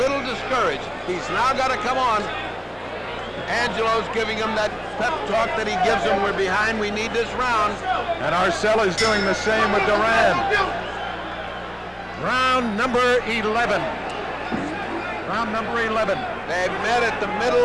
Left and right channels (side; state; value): both; identical; correlation 1.00